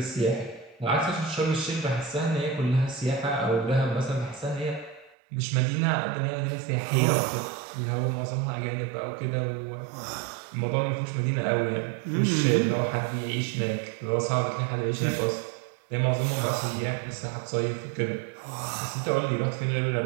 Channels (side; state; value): left; drops out; at 5.2 s